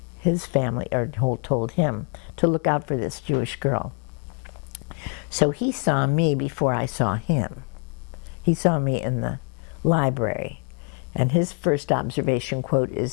his family, or told him, to look out for this Jewish girl. So he saw me before I saw him. He saw me in the library. And his first observation quote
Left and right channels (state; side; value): quieter; right; 38.2 dB